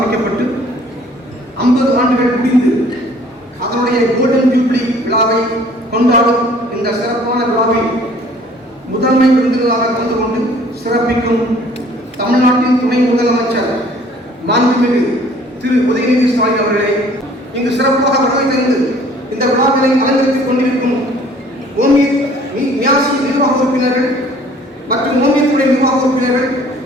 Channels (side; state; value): both; normal; correlation 0.54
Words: 50 ஆண்டுகள் முடிந்து அதனுடைய கோல்டன் ஜூப்ளி விழாவை கொண்டாடும் இந்த சிறப்பான விழாவில் முதன்மை விருந்தினராக கலந்து கொண்டு சிறப்பிக்கும் தமிழ்நாட்டின் துணை முதலமைச்சர் மாண்புமிகு திரு உதயநிதி ஸ்டாலின் அவர்களே, இங்கு சிறப்பாக வருகை தந்து இந்த விழாவினை அலங்கரித்துக் கொண்டிருக்கும் மியாசி நிர்வாக உறுப்பினர்கள் மற்றும் ஓமியத்துறை நிர்வாக உறுப்பினர்கள்,